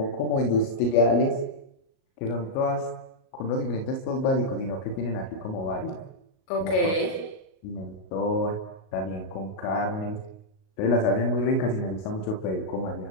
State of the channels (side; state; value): right; late; 37 ms